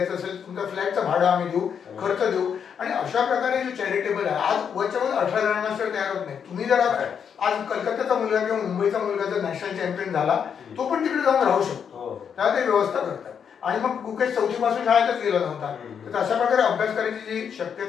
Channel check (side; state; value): right; quieter; 7.4 dB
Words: असेल, तुमच्या फ्लॅटचं भाडं आम्ही देऊ, खर्च देऊ आणि अशा प्रकारे जे चॅरिटेबल आहे, आज वरच्या वर 18 ग्रँडमास्टर तयार होत नाही. तुम्ही जर आज कलकत्त्याचा मुलगा किंवा मुंबईचा मुलगा जर नॅशनल चॅम्पियन झाला, तो पण तिकडे जाऊन राहू शकतो. त्याला ते व्यवस्था करतात. आणि मग गुकेश चौथीपासून शाळेतच गेला नव्हता, तर अशा प्रकारे अभ्यास करायची जी